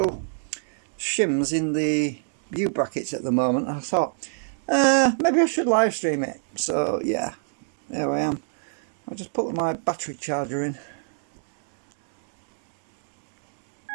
shims in the U brackets at the moment. I thought maybe I should live stream it. So yeah, there I am. I just put my battery charger in.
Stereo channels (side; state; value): left; silent; digital silence